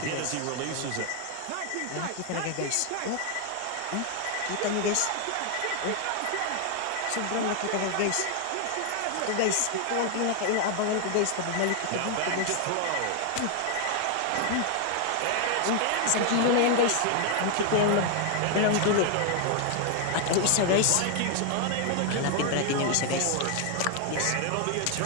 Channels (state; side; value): different; both; correlation 0.00